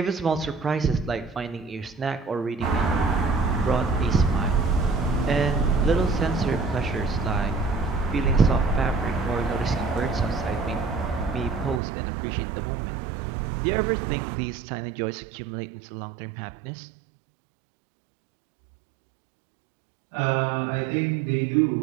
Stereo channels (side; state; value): left; drops out; at 11.8 s